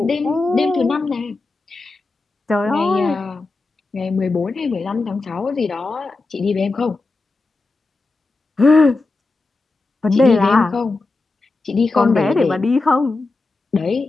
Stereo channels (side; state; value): right; quieter; 3.5 dB